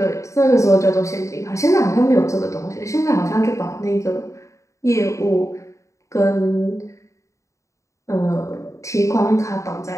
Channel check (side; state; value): right; late; 0.15 ms